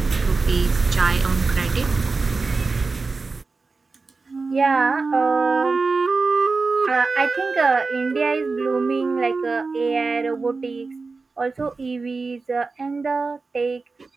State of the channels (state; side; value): quieter; left; 4.1 dB